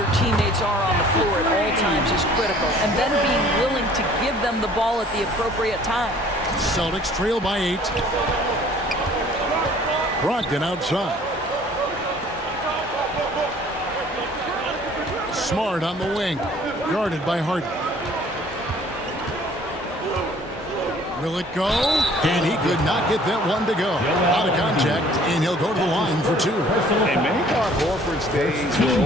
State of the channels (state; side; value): normal; both; correlation 0.54